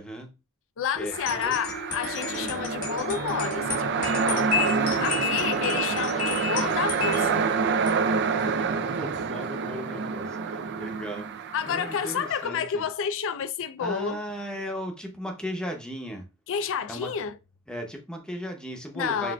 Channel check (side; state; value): both; normal; correlation 0.04